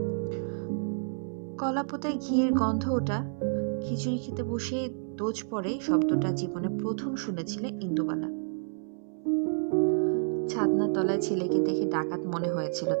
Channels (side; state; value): left; silent; 58 dB below the other